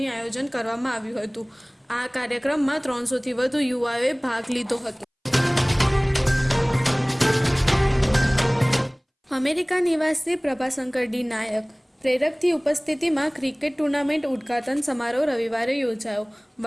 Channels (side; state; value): both; identical; correlation 1.00